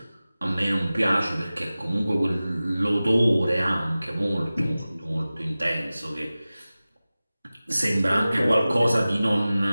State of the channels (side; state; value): both; inverted; correlation -0.97